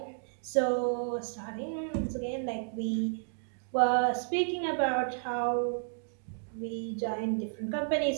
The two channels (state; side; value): silent; left; digital silence